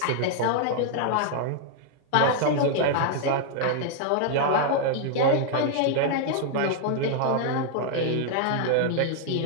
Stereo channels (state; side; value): different; both; correlation 0.00